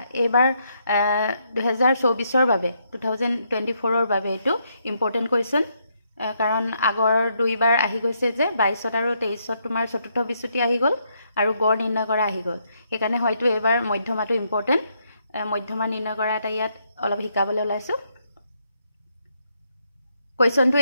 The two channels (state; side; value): inverted; both; correlation -0.76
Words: এইবাৰ 2024ৰ বাবে 2024ৰ বাবে এটো ইম্পৰ্টেন্ট কোৱেশ্চন কাৰণ আগৰ দুইবাৰ আহি গৈছে যে 22 আৰু 23 তোমাৰ চতুৰ্থ বিচ্যুতি আহি গল আৰু গড় নিৰ্ণয় কৰা আহি গল। সেইকাৰণে হয়তো এবাৰ মধ্যমাটো ইম্পৰ্টেন্ট মধ্যমা নিৰ্ণয় কৰা এটা ইয়াত অলপ শিকাবলৈ ওলাইছো। কোৱেশ্চনটো